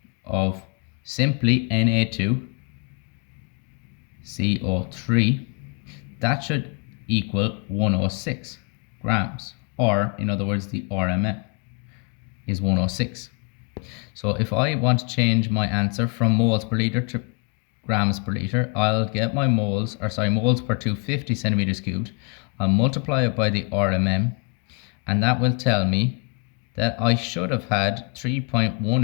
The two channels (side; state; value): right; quieter; 36.0 dB